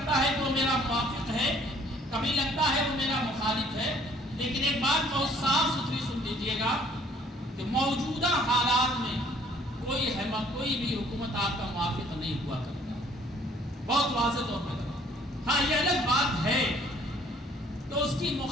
ہے کہ وہ میرا موافق ہے، کبھی لگتا ہے وہ میرا مخالف ہے، لیکن ایک بات بہت صاف ستھری سن لیجیے گا کہ موجودہ حالات میں کوئی بھی حکومت آپ کا موافق نہیں ہوا کرتا، بہت واضح طور پر۔ ہاں یہ الگ بات ہے تو اس کی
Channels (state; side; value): normal; both; correlation 0.58